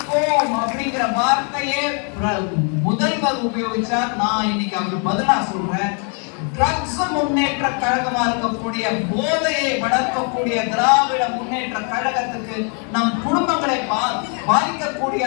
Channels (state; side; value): quieter; right; 39.4 dB